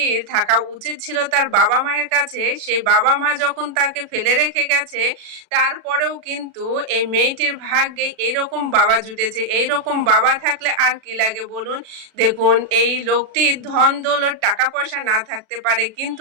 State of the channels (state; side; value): late; left; 37 ms